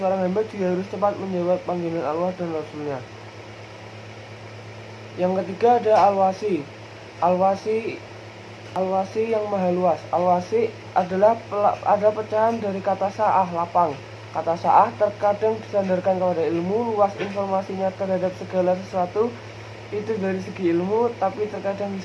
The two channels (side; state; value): both; identical; correlation 1.00